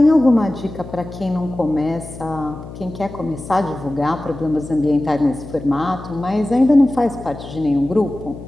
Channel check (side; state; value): left; noise; hum, 13 dB below the sound